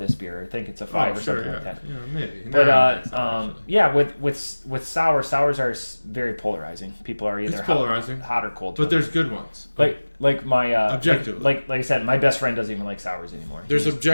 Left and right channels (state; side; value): inverted; both; correlation -1.00